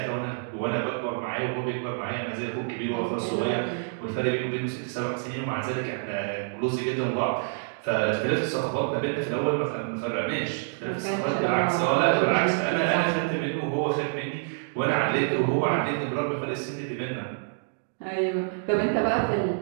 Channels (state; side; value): silent; left; digital silence